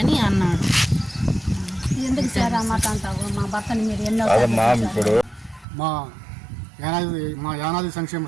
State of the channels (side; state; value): left; drops out; at 5.7 s